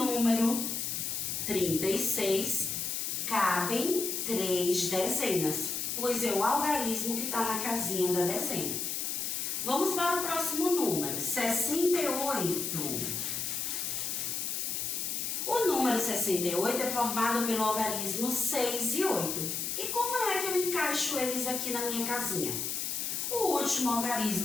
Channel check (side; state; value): left; noise; hiss, 2 dB below the sound